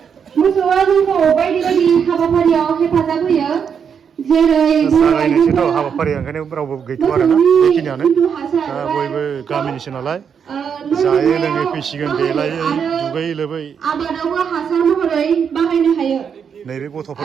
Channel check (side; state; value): left; quieter; 7.2 dB